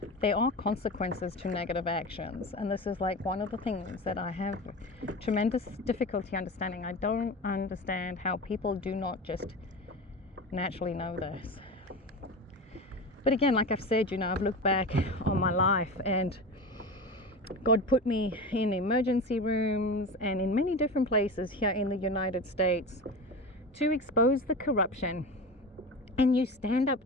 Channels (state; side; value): normal; both; correlation 0.28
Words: There are consequences to negative actions, and this is like one of the things that I have tremendous difficulty understanding. I don't understand how people do not just naturally know this. But again, like I've said, you know, I've looked back on my life and God put me in emergency rooms and in many different places here in the United States to expose the corruption. And you stand up